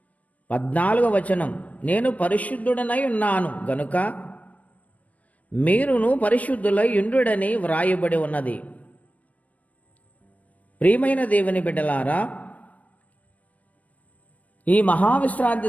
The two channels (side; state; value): right; late; 0.069 ms